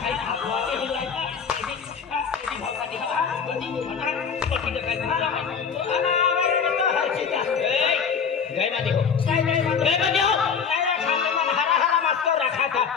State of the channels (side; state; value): right; quieter; 6.5 dB